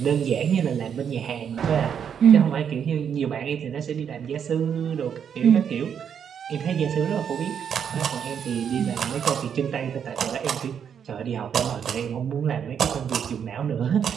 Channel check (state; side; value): quieter; left; 7.9 dB